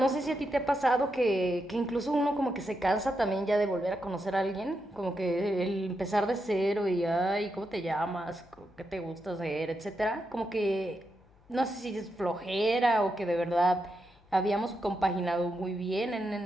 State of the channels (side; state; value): left; noise; hum, 29 dB below the sound